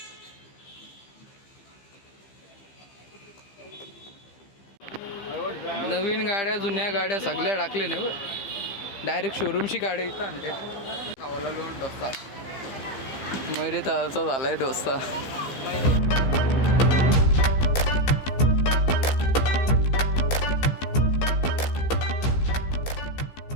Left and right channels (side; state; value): right; late; 15 ms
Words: नवीन गाड्या जुन्या गाड्या सगळ्या टाकले नाही बरं डायरेक्ट शोरूमची गाड्या इथं आणले खावाला लोन डोसा मैरे ताचा झालाय डोसा